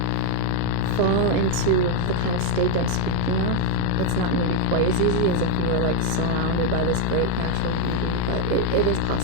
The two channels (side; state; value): both; different; correlation 0.02